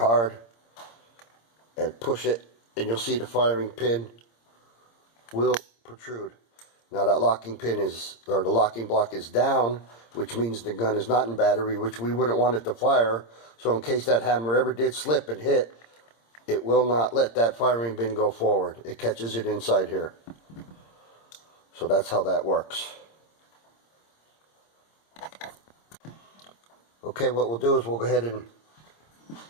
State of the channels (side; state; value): right; late; 26 ms